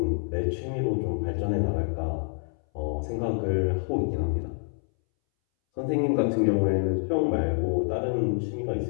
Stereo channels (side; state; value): right; silent; 60 dB below the other